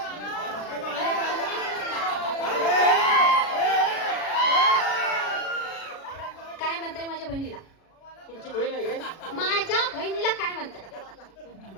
काय म्हणताय माझ्या बहिणीला? तुमची बहीण आहे काय. माझ्या बहिणीला काय म्हणताय?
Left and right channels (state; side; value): late; right; 36 ms